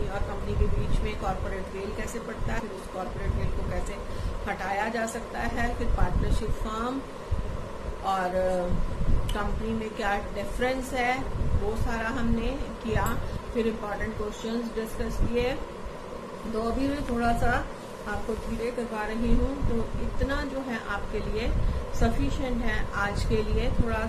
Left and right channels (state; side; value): identical; both; correlation 1.00